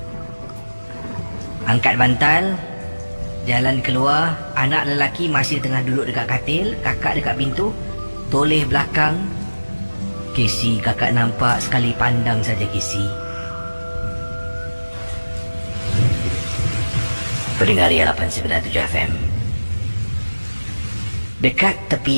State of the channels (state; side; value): inverted; both; correlation -1.00